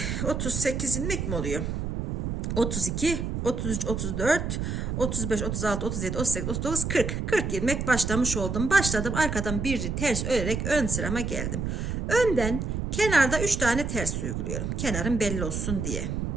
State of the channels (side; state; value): right; noise; rumble, 2 dB below the sound